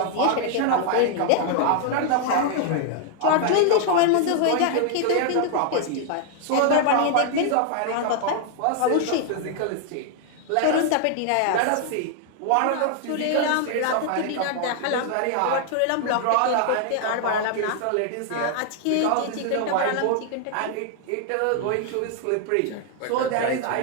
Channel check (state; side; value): different; both; correlation 0.00